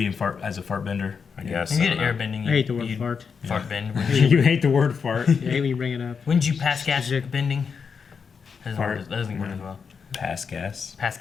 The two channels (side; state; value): right; quieter; 6.0 dB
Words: as a fart bender, I guess. You get airbending. I hate the word fart. Fart bend. You hate the word fart. Yeah, I hate when you bring it up. Wouldn't you pass gas bending? That doesn't work as well. Pass gas. Pass